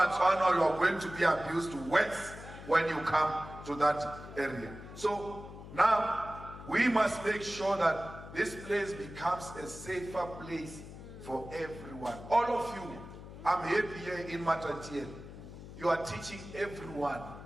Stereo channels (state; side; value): noise; left; hum, 14 dB below the sound